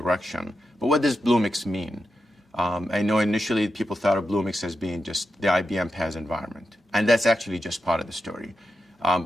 But what does Bluemix mean? I know initially people thought of Bluemix as being just the IBM PaaS environment, and that's actually just part of the story.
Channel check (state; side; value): normal; both; correlation 0.88